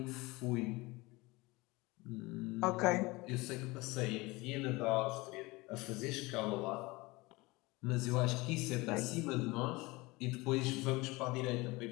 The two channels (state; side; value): quieter; right; 22.8 dB